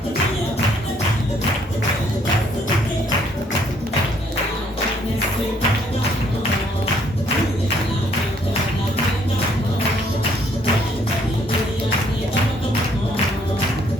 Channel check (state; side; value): normal; both; correlation 0.66